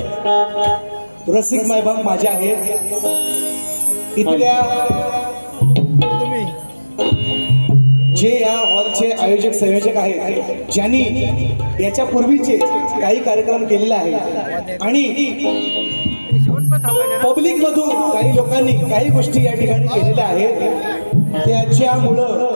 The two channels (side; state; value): both; inverted; correlation -1.00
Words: रसिक मायबाप माझे आहेत. इथल्या जे या हॉलचे आयोजक संयोजक आहेत, ज्यांनी याच्या पूर्वीचे काही कार्यक्रम केलेले आहेत आणि पब्लिक मधून काही लोकांनी काही गोष्टी या ठिकाणी केलेल्या आहेत,